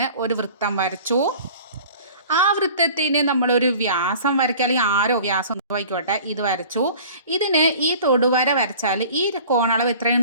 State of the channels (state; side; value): inverted; both; correlation -0.45